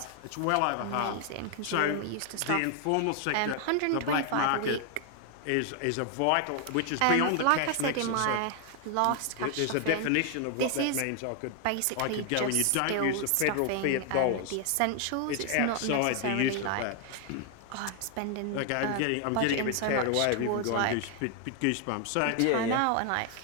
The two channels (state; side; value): different; both; correlation 0.00